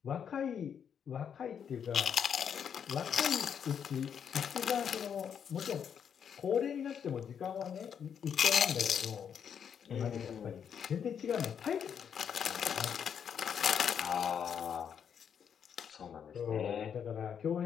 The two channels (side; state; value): right; quieter; 7.8 dB